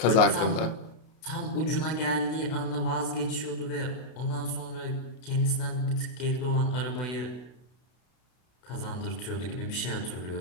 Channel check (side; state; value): right; late; 32 ms